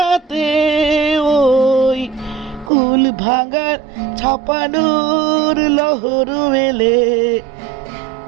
ওই কুল ভাঙার ছাপানোর লহর এলে,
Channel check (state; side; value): drops out; left; at 2.7 s